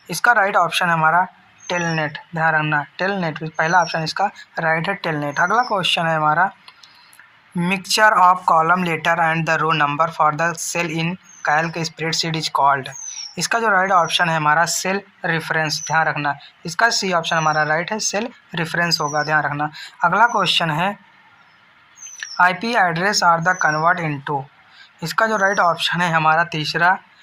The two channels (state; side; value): identical; both; correlation 1.00